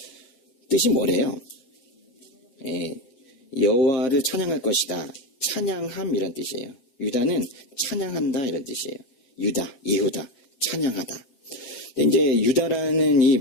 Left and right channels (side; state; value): right; late; 7.5 ms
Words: 뜻이 뭐래요? 여호와를 찬양할 것이다. 찬양함 이런 뜻이에요. 유다는 찬양한다 이런 뜻이에요. 유다, 예후다, 찬양하다. 근데 이제 유다라는 이